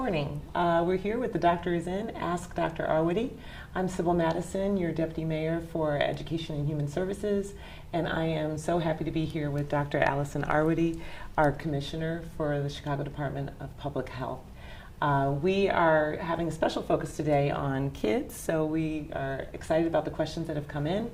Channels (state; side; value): identical; both; correlation 1.00